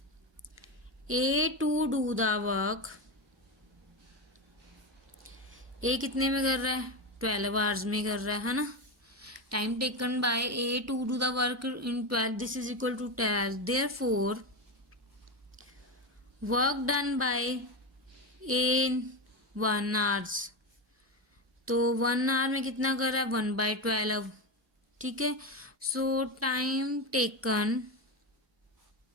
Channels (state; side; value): normal; both; correlation 0.16